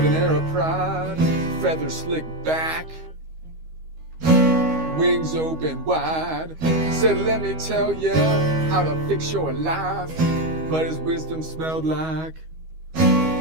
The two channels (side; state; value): left; late; 13 ms